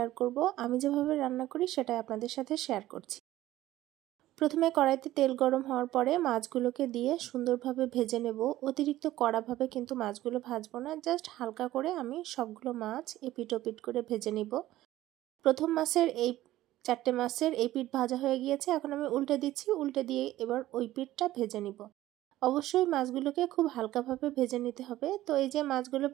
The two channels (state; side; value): quieter; left; 15.2 dB